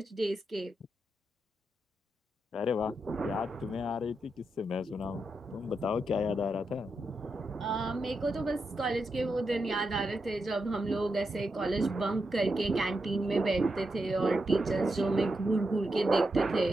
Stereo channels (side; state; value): both; normal; correlation 0.86